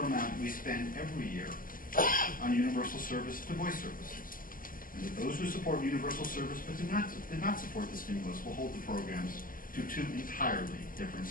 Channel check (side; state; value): right; late; 0.40 ms